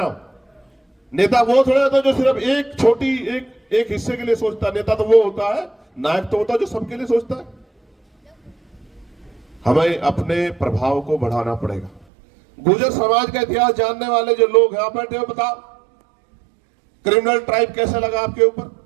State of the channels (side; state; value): left; drops out; at 12.1 s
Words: हूं, नेता वो थोड़ा होता है जो सिर्फ एक हिस्से के लिए सोचता है। नेता तो वो होता है, नायक तो होता है जो सबके लिए सोचता है। हमें अपने प्रभाव को बढ़ाना पड़ेगा। गुर्जर समाज का इतिहास जानने वाले जो लोग यहां बैठे हो, बताओ क्रिमिनल ट्राइब कैसे लगा आपके ऊपर?